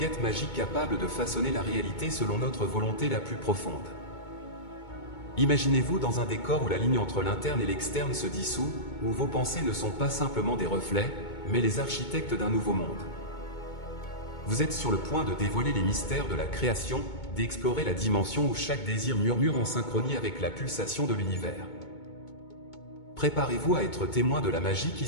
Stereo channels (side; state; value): right; late; 2.2 ms